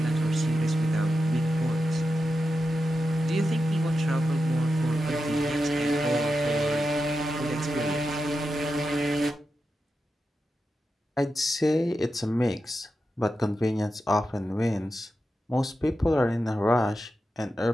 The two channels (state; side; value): normal; both; correlation 0.89